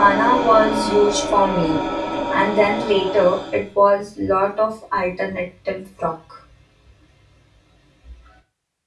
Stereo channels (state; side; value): identical; both; correlation 1.00